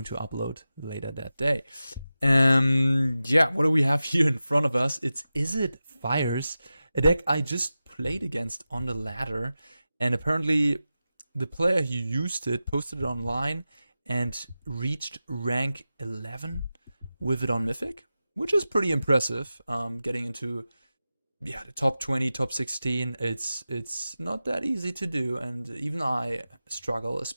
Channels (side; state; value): both; inverted; correlation -0.93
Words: to upload later that day. Yeah, what do we have here in front of us? It's Izzet Fires, a deck I just played against on the ladder, and apparently the player who used it posted it online and reached rank 11 with it on Mythic, which is pretty impressive. Getting into the top 20, top 16, it's not that easy to do, and even I struggle,